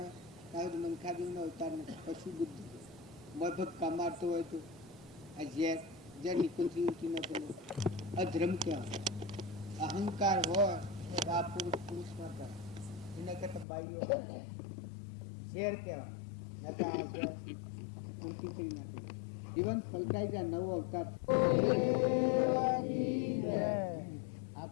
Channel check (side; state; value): right; drops out; at 13.7 s